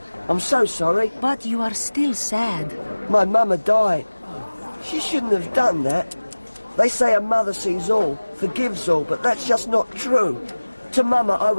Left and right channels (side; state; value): both; inverted; correlation -1.00